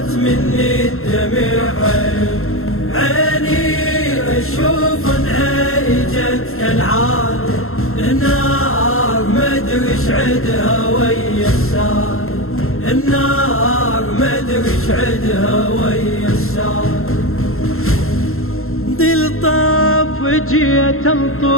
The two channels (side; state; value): right; late; 0.62 ms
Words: مني الدمع عيني أشوف انهجت كالعادة النار مدري ايش عدها ويا السادة النار مدري ايش عدها ويا السادة دل طاف جيت